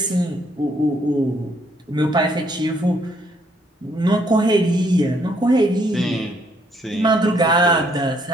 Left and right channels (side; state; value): both; normal; correlation 0.69